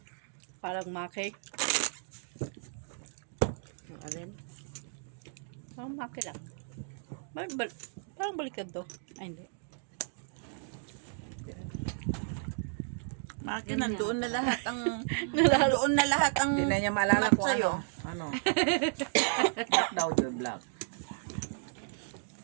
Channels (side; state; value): left; silent; digital silence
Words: Parang maki. Ang alin? Parang maki lang. Parang baliktad to. Ay, hindi. Maki, nandoon na lahat ang... nandoon na lahat ang... Hindi na niya maalala kung sa'yo. ano. Black daw yun, black.